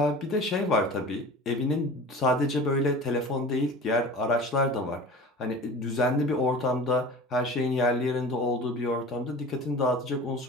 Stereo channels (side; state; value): both; normal; correlation 0.38